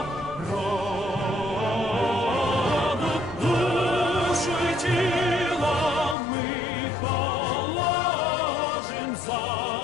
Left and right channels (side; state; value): right; drops out; at 6.2 s